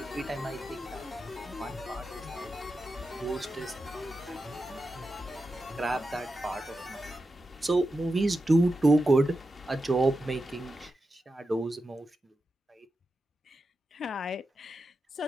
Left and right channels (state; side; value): normal; both; correlation 0.90